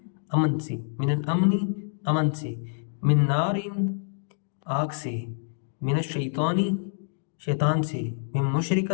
امن سے، من الامنی امن سے، من نارن آگ سے، من الشیطانی شیطان سے، من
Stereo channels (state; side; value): silent; right; digital silence